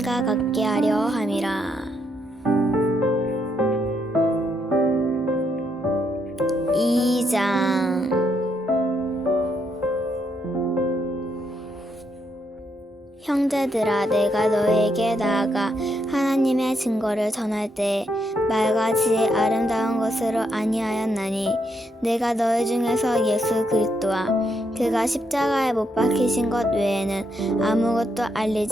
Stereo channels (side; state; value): both; normal; correlation 0.77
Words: 같게 하려 함이라. 2장 형제들아, 내가 너희에게 나아가 하나님의 증거를 전할 때에 말과 지혜 아름다운 것으로 아니하였나니 내가 너희 중에서 예수 그리스도와 그가 십자가에 못 박히신 것 외에는 아무것도